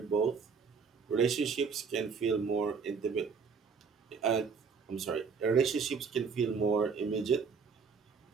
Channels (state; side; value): quieter; left; 5.6 dB